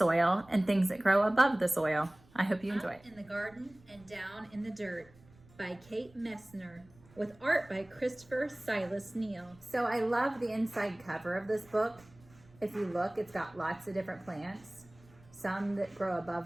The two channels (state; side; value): noise; right; rumble, 26 dB below the sound